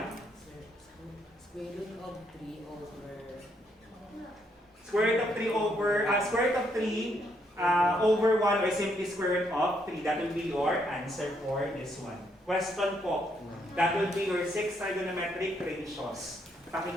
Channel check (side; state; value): both; normal; correlation 0.74